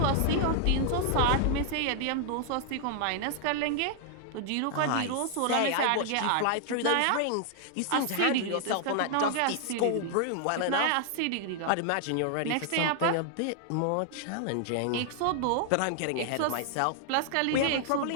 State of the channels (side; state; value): both; different; correlation 0.00